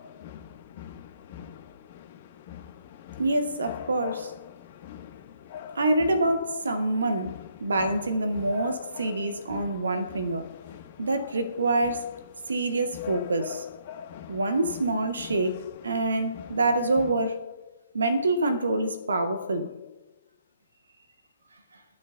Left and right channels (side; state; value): both; inverted; correlation -0.72